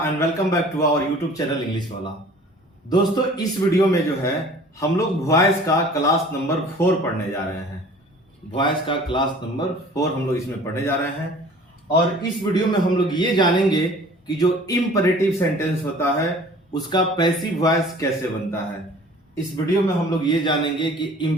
and welcome back to our YouTube channel English Wala. दोस्तों, इस video में जो है हम लोग वॉइस का क्लास नंबर 4 पढ़ने जा रहे हैं। वॉइस का क्लास नंबर 4 हम लोग इसमें पढ़ने जा रहे हैं और इस वीडियो में हम लोग ये जानेंगे कि जो इंपरेटिव सेंटेंस होता है उसका पैसिव वॉइस कैसे बनता है। इस वीडियो में हम लोग ये जानेंगे कि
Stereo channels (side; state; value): both; normal; correlation 0.48